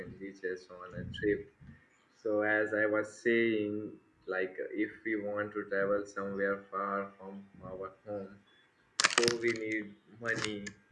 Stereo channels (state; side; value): identical; both; correlation 1.00